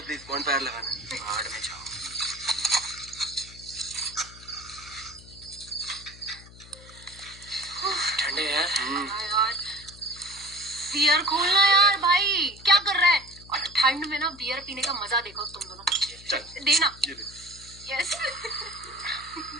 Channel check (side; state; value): left; noise; hum, 20 dB below the sound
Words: प्लीज, बॉनफायर लगाना है। पहाड़ में जाओ। ठंडे यार। यार बियर खोलना यार भाई, क्या कर रहा है? और ठंड में ना बियर पीने का मजा देखो तुम दोनों। चल देना। ये दे। यस।